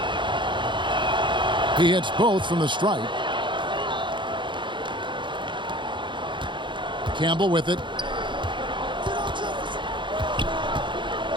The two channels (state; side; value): late; left; 0.23 ms